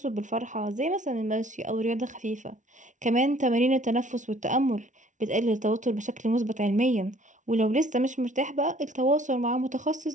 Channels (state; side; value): late; left; 0.37 ms